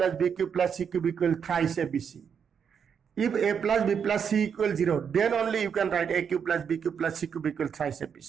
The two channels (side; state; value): left; quieter; 7.2 dB